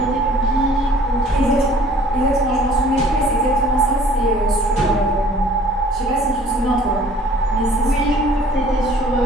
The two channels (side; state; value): both; normal; correlation 0.53